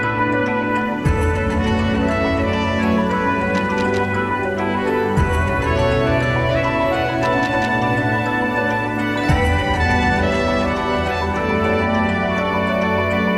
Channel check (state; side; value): identical; both; correlation 1.00